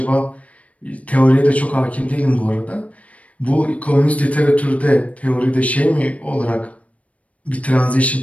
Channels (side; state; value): right; late; 0.066 ms